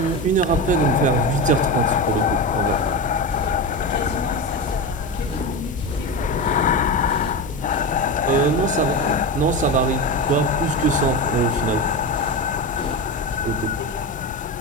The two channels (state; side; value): normal; both; correlation 0.20